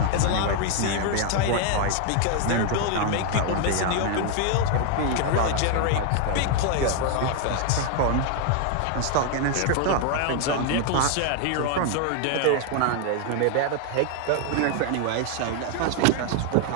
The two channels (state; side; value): different; both; correlation 0.00